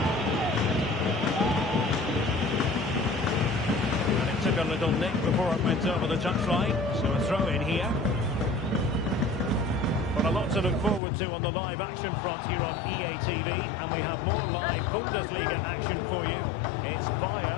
And it took a little nick before it went over the touchline, so a throw in here. But a lot to look forward to on the live action front here on EA TV, and we have more live Bundesliga action for you. It's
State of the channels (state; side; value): drops out; right; at 11.0 s